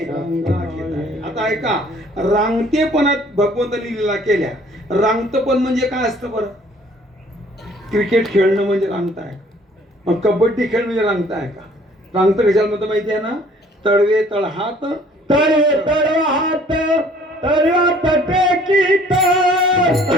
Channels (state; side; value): normal; both; correlation 0.56